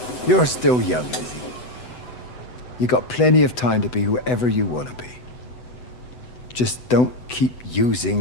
You're still young, Lizzie. You got plenty of time to be whoever you want to be. Just don't keep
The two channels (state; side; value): late; right; 8.0 ms